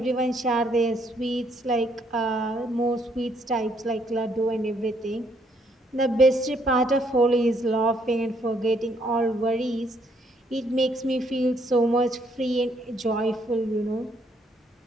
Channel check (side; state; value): both; normal; correlation 0.70